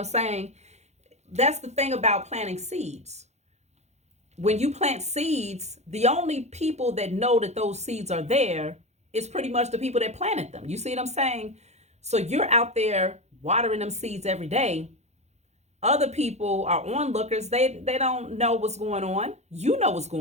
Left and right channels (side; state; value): left; late; 0.32 ms